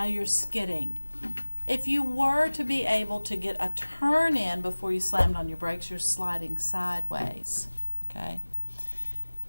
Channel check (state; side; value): inverted; both; correlation -1.00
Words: you're skidding. If you were to be able to get a turn in before you slammed on your brakes, you're sliding sideways, okay?